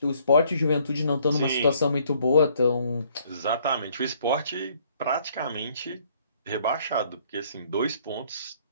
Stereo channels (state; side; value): inverted; both; correlation -0.64